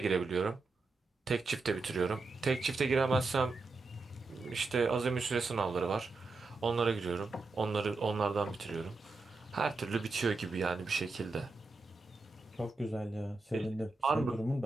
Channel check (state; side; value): quieter; left; 3.6 dB